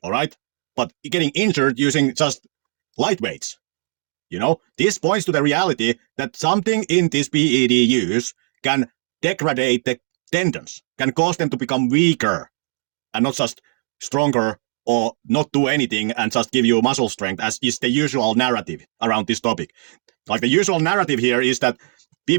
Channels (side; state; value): left; silent; 65 dB below the other